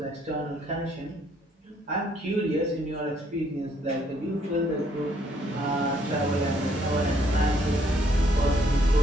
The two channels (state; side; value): normal; both; correlation 0.68